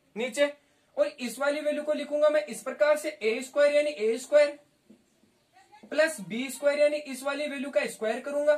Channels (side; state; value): both; identical; correlation 1.00